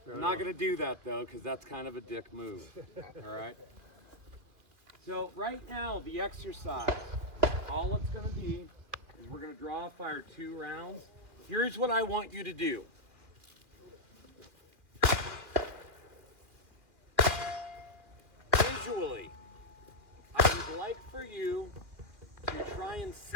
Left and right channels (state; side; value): late; left; 2.3 ms